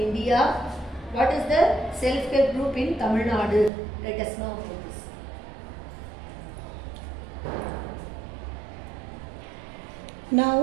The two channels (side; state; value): left; drops out; at 3.7 s